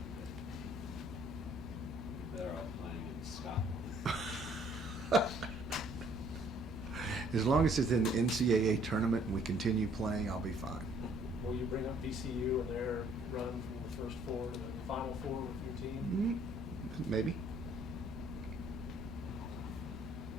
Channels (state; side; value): normal; both; correlation 0.61